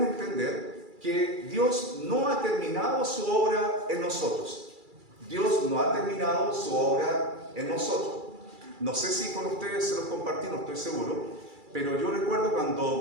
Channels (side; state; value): left; late; 2.3 ms